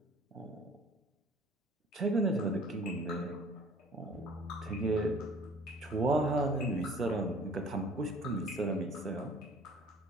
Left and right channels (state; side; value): normal; both; correlation 0.51